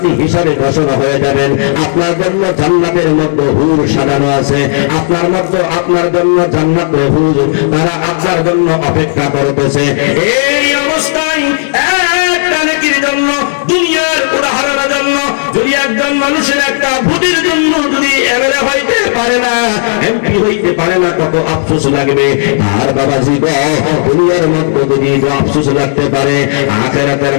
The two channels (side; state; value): right; silent; digital silence